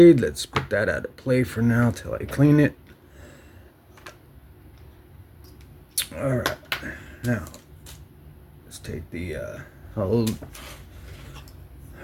Let's put that out of play for now till I clean it. All right. Now, let's take the old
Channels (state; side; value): identical; both; correlation 1.00